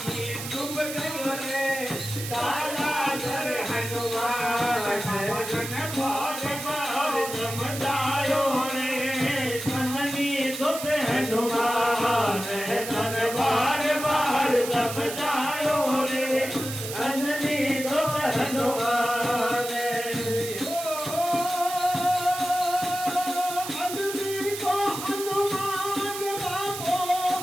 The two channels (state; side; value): noise; right; hiss, 8 dB below the sound